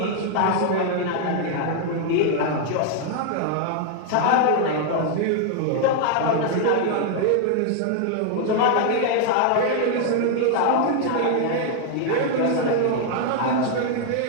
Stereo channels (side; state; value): both; different; correlation 0.00